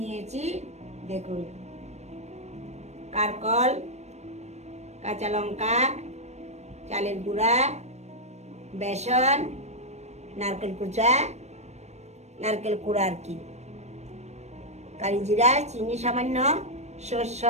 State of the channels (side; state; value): left; late; 0.32 ms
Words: দেখুন। কারকল, কাঁচা লঙ্কা, চালের গুঁড়া, বেসন, নারকেল কুচা, নারকেল কুড়া আর কি, কালি জিরা, চিনি সামান্য, সর্ষ,